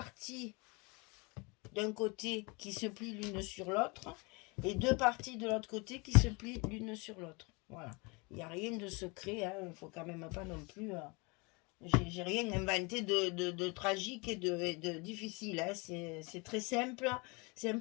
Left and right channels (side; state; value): right; quieter; 28.7 dB